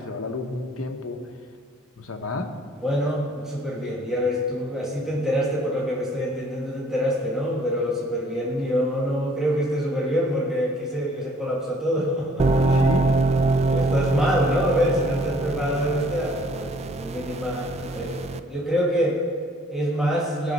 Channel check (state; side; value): normal; both; correlation 0.59